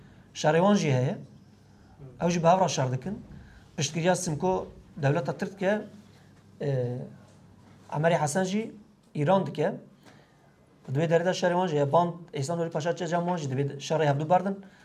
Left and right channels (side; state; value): both; identical; correlation 1.00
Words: شروان جی هه اوج به هفرا شر دکن پشتگیری سمکو دولت ترک که عمری حسن جی ایران دکه دوی درida شهر جه باند ایسان ولی پاشا چه جمع جه دوی شهر هفدو بردن